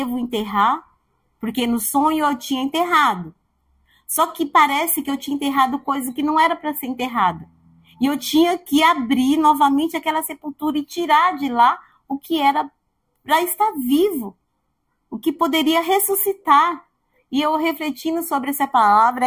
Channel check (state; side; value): identical; both; correlation 1.00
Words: enterrar? Porque no sonho eu tinha enterrado. Só que parece que eu tinha enterrado coisa que não era para ser enterrada. E eu tinha que abrir novamente aquela sepultura e tirar de lá o que era para estar vivo, o que poderia ressuscitar. E eu refletindo sobre essa palavra,